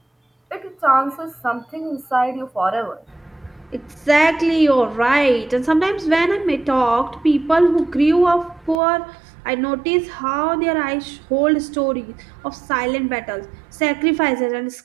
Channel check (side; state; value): left; drops out; at 8.8 s